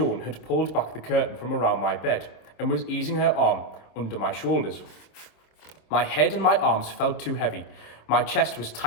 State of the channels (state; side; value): late; right; 26 ms